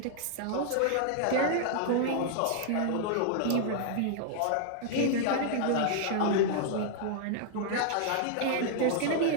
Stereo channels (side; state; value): both; different; correlation -0.01